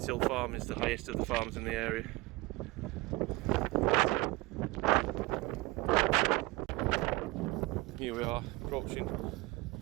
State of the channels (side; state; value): left; quieter; 22.3 dB